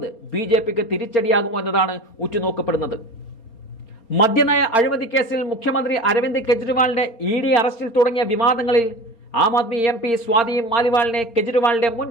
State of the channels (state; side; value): late; right; 4.3 ms